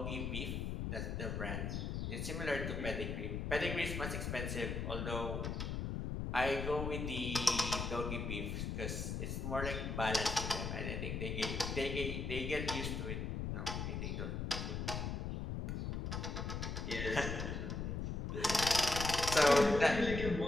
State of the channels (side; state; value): left; noise; rumble, 2 dB below the sound